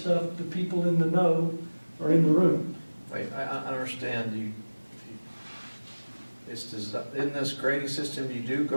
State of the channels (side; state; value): both; inverted; correlation -1.00